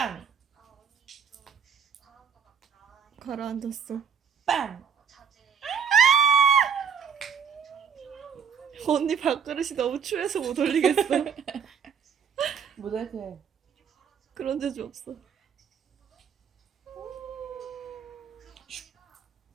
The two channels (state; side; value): quieter; left; 7.1 dB